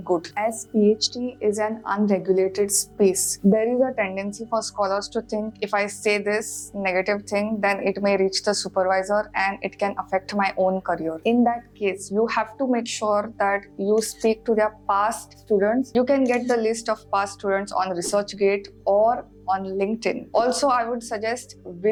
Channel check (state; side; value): identical; both; correlation 1.00